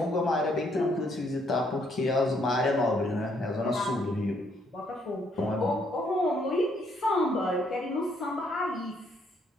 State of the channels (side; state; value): both; normal; correlation 0.70